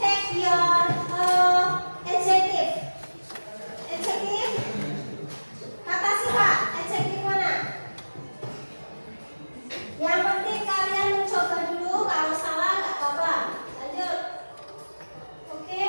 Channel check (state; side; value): inverted; both; correlation -1.00